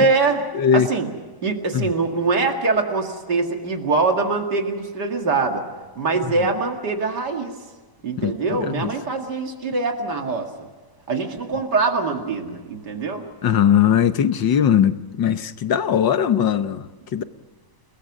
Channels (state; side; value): late; right; 1.0 ms